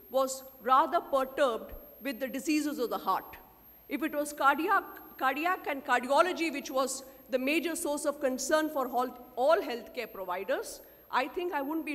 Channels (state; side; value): identical; both; correlation 1.00